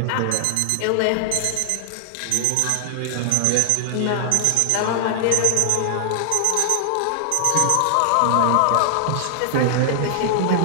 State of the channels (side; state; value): both; different; correlation 0.00